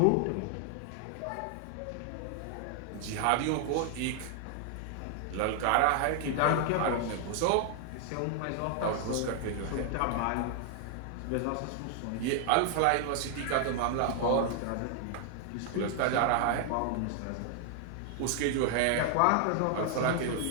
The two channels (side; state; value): both; different; correlation 0.00